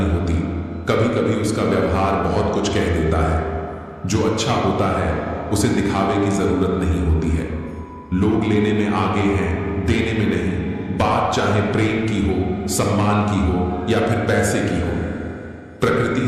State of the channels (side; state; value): both; identical; correlation 1.00